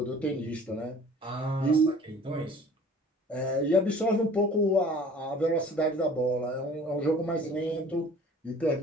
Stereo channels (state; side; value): normal; both; correlation 0.48